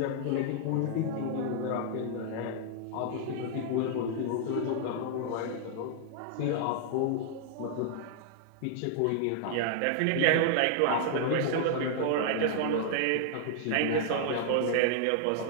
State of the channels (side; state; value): both; different; correlation 0.00